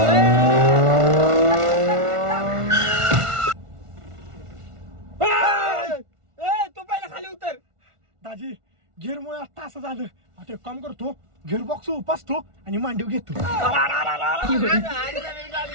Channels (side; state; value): left; late; 1.4 ms